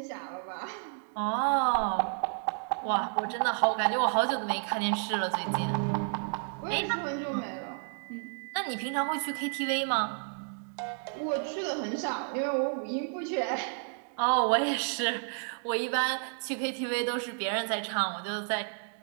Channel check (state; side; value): silent; left; 57 dB below the other